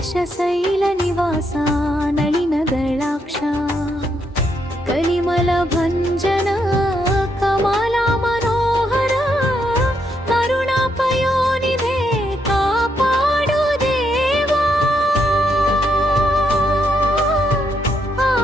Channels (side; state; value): both; normal; correlation 0.77